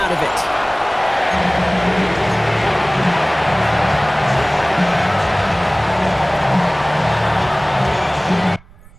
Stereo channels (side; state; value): right; noise; rumble, 24 dB below the sound